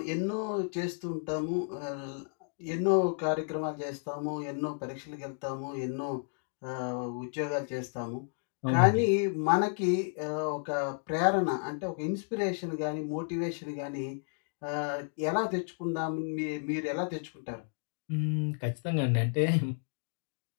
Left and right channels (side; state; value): right; silent; 56 dB below the other